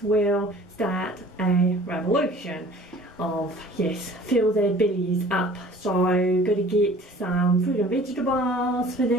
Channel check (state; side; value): normal; both; correlation 0.48